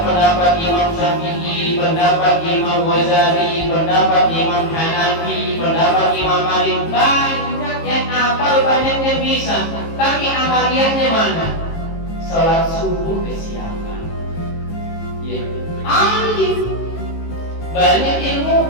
Imam Syafi'i, pendapat Imam Ghazali, pendapat Imam Hanafi, pendapat Imam Malik, banyak yang yang hafal, banyak yang bisa, tapi amaliyahnya mana? Sholat subuh kesiapan. Ya, alim, banyak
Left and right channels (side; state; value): right; late; 18 ms